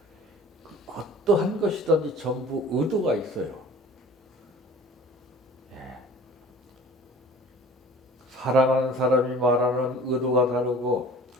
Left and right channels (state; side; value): normal; both; correlation 0.45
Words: 어떠한 것이든지 전부 의도가 있어요. 사랑하는 사람이 말하는 의도가 다르고